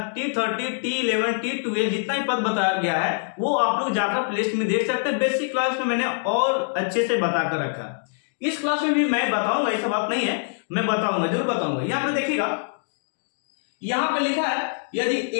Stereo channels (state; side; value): silent; right; digital silence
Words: T11, T12 जितना ही पद बताया गया है, वो आप लोग जाकर प्लेलिस्ट में देख सकते हैं। बेसिक क्लास में मैंने और अच्छे से बता कर रखा। इस क्लास में भी मैं बताऊंगा, ऐसा बात नहीं है, मैं बताऊंगा, जरूर बताऊंगा। यहां पे देखिएगा, यहां पे लिखा है यदि